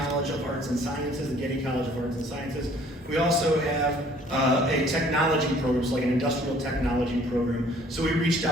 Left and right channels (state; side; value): normal; both; correlation 0.57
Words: of Arts and Sciences, the Getty College of Arts and Sciences. We also have a technology program, so like an industrial technology program. So we reached